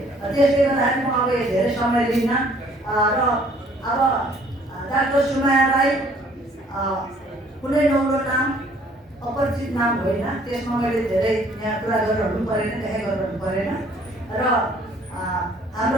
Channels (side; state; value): both; normal; correlation 0.59